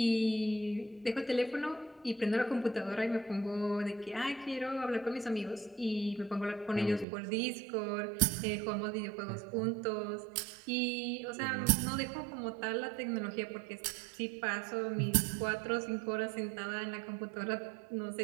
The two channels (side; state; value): left; drops out; at 7.1 s